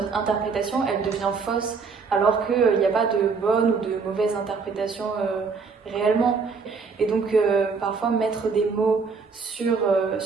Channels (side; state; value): left; quieter; 5.0 dB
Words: interprétation, elle devient fausse, alors qu'il n'y a pas de bonne ou de mauvaise interprétation réellement. Et donc, parfois, mettre des mots sur